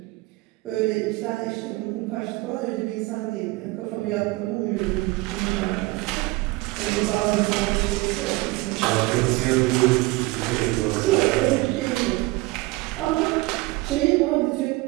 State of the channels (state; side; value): quieter; left; 22.2 dB